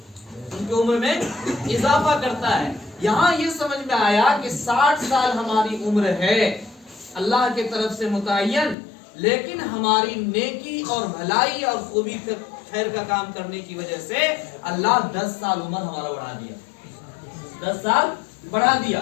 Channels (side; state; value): right; drops out; at 8.8 s